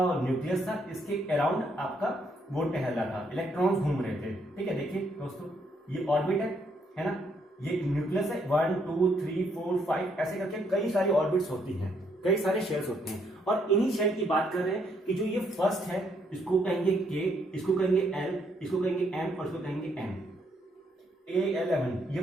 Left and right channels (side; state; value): both; normal; correlation 0.72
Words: न्यूक्लियस था, इसके अराउंड आपका वो टहल रहा था, इलेक्ट्रॉन्स घूम रहे थे। ठीक है, देखिए दोस्तों ये ऑर्बिट है ना, ये न्यूक्लियस है, 1 2 3 4 5 ऐसे करके कई सारी ऑर्बिट्स होती हैं, कई सारे शेल्स होते हैं। और इन्हीं शेल की बात कर रहे हैं कि जो ये फर्स्ट है इसको कहेंगे के, इसको कहेंगे एल, इसको कहेंगे एम और इसको कहेंगे एन। A11 ये